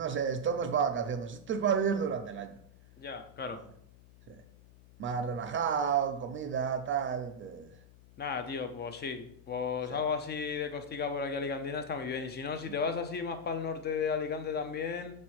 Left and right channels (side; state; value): left; noise; hum, 22 dB below the sound